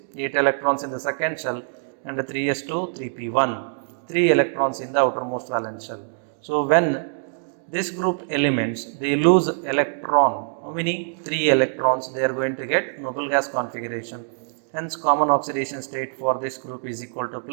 8 electrons in the second shell, and 3s2, 3p1, 3 electrons in the outermost valence shell. So when this group elements, they lose electron, how many? 3 electrons, they are going to get noble gas configuration. Hence common oxidation state for this group is equal to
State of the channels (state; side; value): silent; left; digital silence